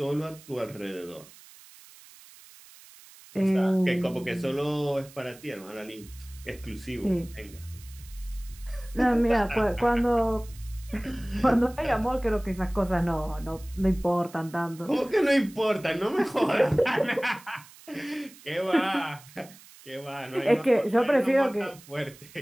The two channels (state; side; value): noise; right; hiss, 22 dB below the sound